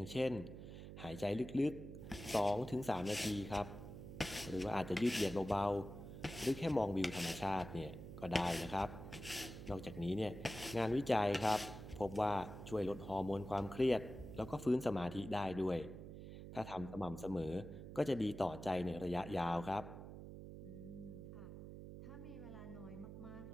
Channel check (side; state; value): right; noise; hum, 11 dB below the sound